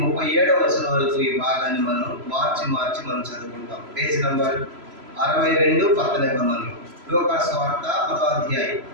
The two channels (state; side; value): late; left; 3.0 ms